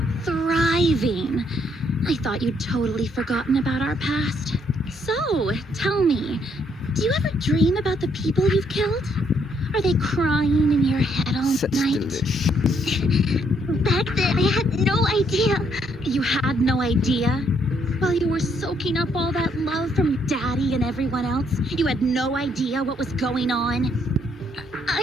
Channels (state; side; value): normal; both; correlation 0.71